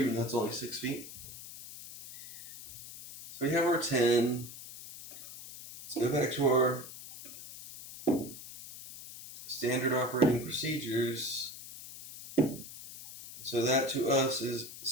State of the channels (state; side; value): noise; left; hiss, 13 dB below the sound